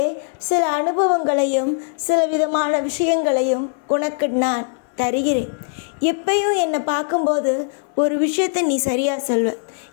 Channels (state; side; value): silent; right; 65 dB below the other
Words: சில அனுபவங்களையும் சில விதமான விஷயங்களையும் உனக்கு நான் தருகிறேன். எப்பயும் என்னை பார்க்கும்போது ஒரு விஷயத்தை நீ சரியாக சொல்வ.